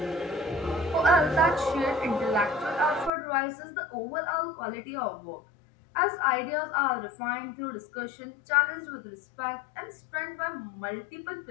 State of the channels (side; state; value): right; drops out; at 3.1 s